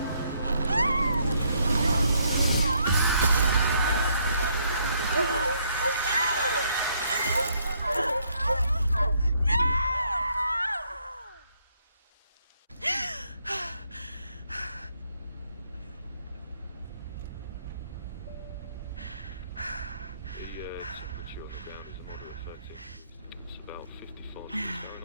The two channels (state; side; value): inverted; both; correlation -0.71